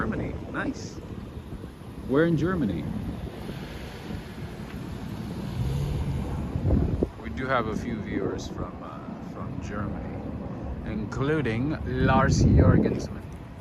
Nice. Where in Germany? We do have a few viewers from Germany, including Lars Jorgensen.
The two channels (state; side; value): identical; both; correlation 1.00